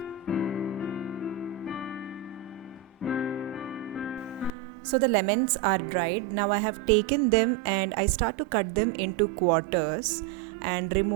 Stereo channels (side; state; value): left; drops out; at 4.5 s